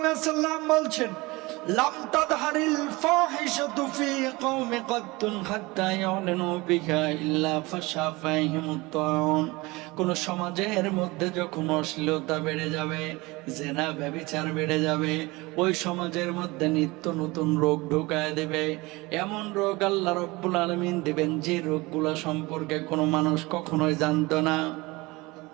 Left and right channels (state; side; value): quieter; left; 22.9 dB